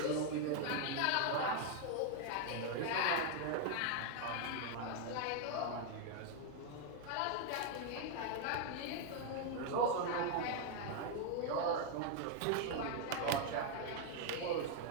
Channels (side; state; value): both; different; correlation 0.00